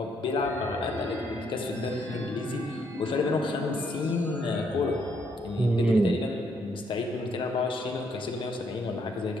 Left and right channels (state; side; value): normal; both; correlation 0.72